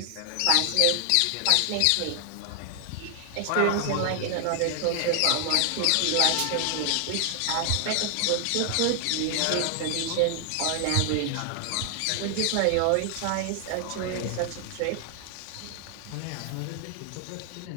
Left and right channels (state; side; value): different; both; correlation 0.00